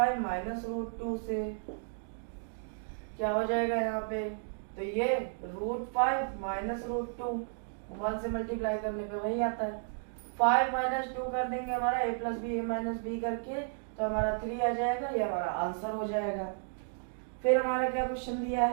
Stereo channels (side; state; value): left; silent; digital silence